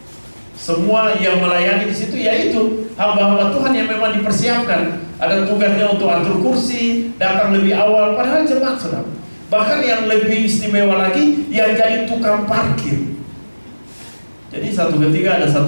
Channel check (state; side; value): inverted; both; correlation -1.00